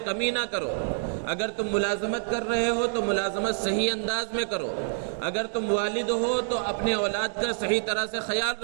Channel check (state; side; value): silent; left; digital silence